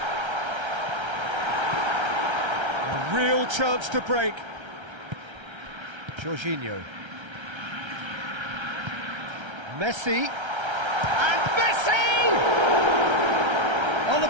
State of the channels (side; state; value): left; late; 1.3 ms